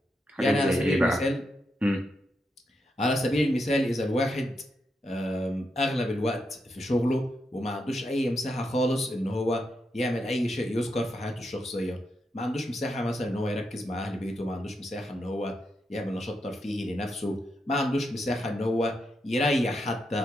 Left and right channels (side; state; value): both; normal; correlation 0.83